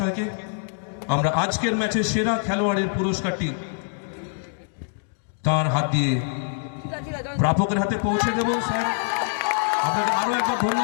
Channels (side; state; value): right; silent; 60 dB below the other